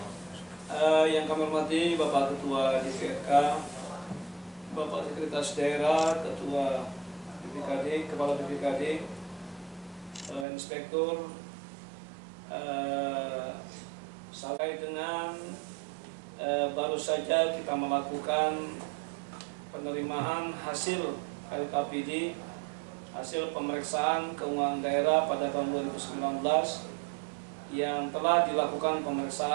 Yang kami hormati Bapak Ketua DPRK, Bapak Sekretaris Daerah, Ketua BPKD, Kepala BPKD, Inspektur, sampai dengan baru saja kita melakukan penerimaan hasil LKPD, hasil pemeriksaan keuangan daerah pada tahun 2019 yang telah dilakukan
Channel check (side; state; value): left; drops out; at 10.5 s